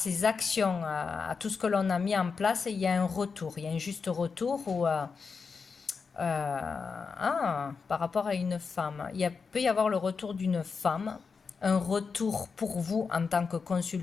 actions, à tout ce que l'on a mis en place. Il y a un retour, il y a un juste retour où, par rapport à une femme. Il peut y avoir le retour d'une femme, un retour pour vous en tant que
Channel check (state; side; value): quieter; right; 5.2 dB